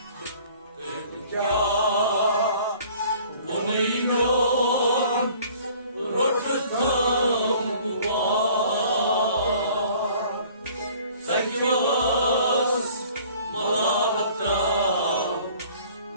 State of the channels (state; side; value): inverted; both; correlation -0.52